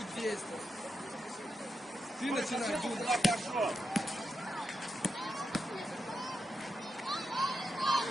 действовать. Ты начинай думать. Пошел.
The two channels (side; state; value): both; normal; correlation 0.86